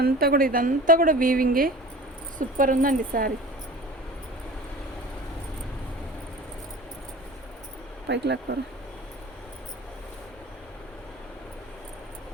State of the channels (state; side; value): normal; both; correlation 0.40